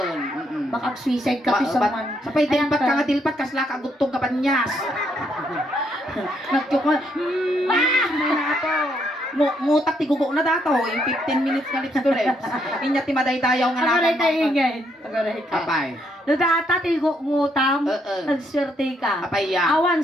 Baka suicide ka pi someone. Sapay dilpat ka nga dilpat, kasla ka gutong ka panyas. Nagkyok mo. May nato. Mutak ti gugo na dato, yung 15 minutes nga lips to lips. Inya ti madaydayaw nga Agaray tayo ingay. Agaray ka. Apay. No data tigo ngutam, nagswerte ka. Apay ya. Awan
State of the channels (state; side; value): normal; both; correlation 0.74